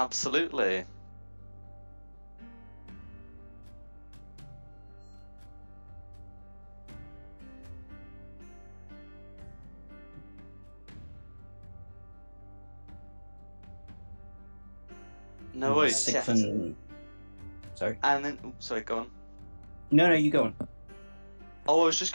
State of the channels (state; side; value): inverted; both; correlation -1.00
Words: No worries. Yes. Sorry. And then, sorry, go on. No, you go on. Oh, I was just